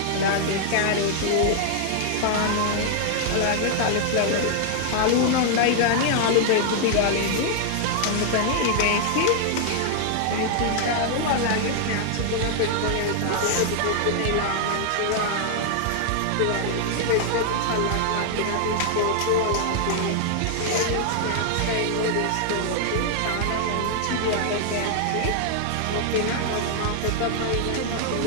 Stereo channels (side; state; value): both; different; correlation 0.00